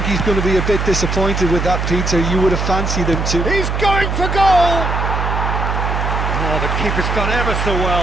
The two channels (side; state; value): right; noise; hum, 1 dB below the sound